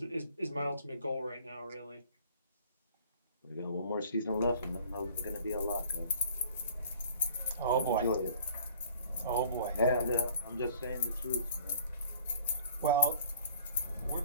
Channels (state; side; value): inverted; both; correlation -0.51